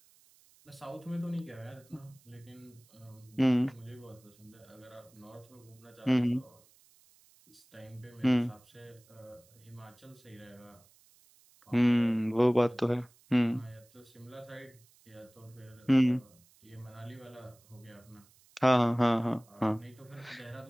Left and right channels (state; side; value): noise; right; hiss, 29 dB below the sound